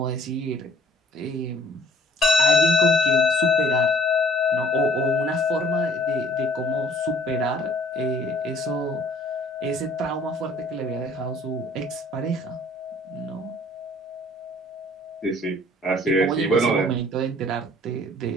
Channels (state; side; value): normal; both; correlation 0.55